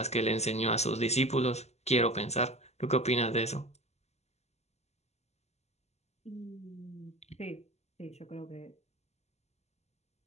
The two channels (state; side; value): late; right; 0.32 ms